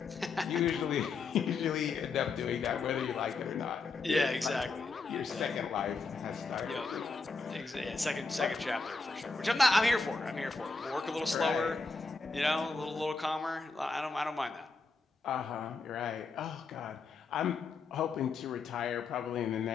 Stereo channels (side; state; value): right; quieter; 4.2 dB